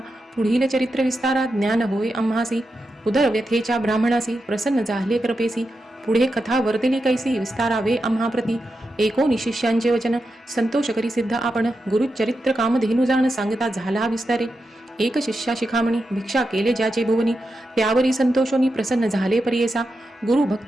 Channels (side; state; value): both; normal; correlation 0.88